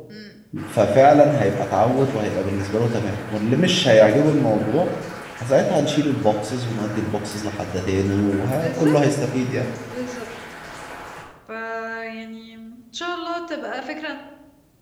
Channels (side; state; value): both; identical; correlation 1.00